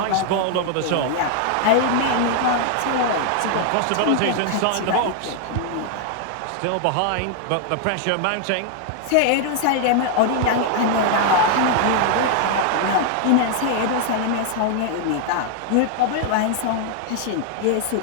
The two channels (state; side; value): different; both; correlation 0.00